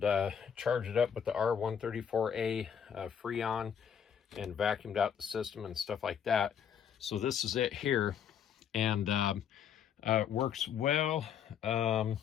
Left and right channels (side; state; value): right; quieter; 8.2 dB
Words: charged it up with the R134A Freon and vacuumed out the system and stuff like that. So this is it here, and it works well. Turn